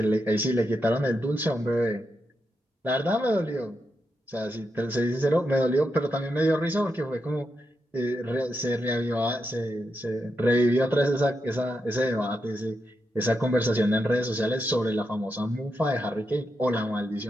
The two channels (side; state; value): both; normal; correlation 0.84